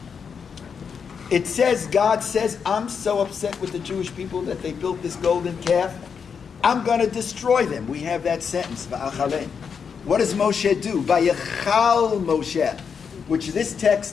It says, God says, I'm so upset with the Jewish people that they built this golden calf. I'm going to destroy them. We have that sentence, Va'achalein. What does Moshe do? Vayachal Moshe, which this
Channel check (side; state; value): right; quieter; 6.4 dB